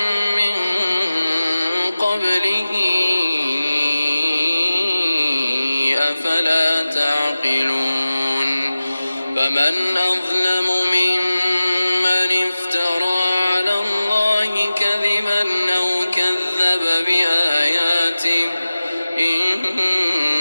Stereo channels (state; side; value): inverted; both; correlation -0.97